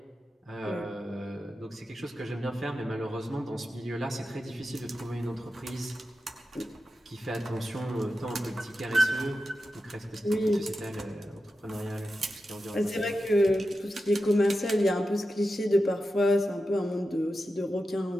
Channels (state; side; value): normal; both; correlation 0.91